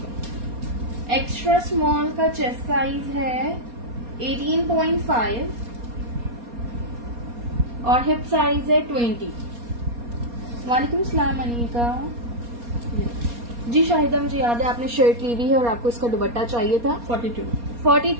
एक्स्ट्रा स्मॉल का चेस्ट साइज है 18.5 और हिप साइज है 20। वालेकुम सलाम अनीका जी। शाहिदा, मुझे याद है आपने शर्ट ली हुई है और आपको इसका दुपट्टा चाहिए था।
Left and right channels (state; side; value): late; left; 4.2 ms